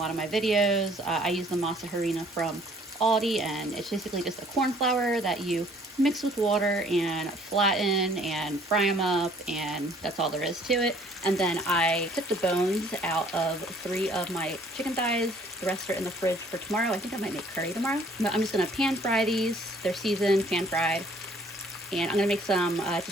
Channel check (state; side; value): normal; both; correlation 0.58